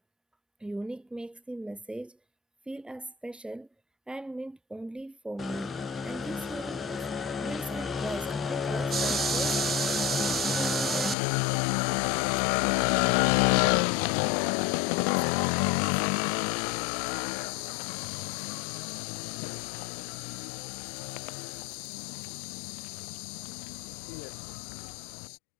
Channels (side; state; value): right; drops out; at 11.2 s